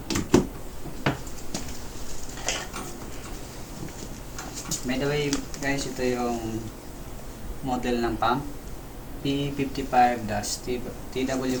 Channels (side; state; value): both; identical; correlation 1.00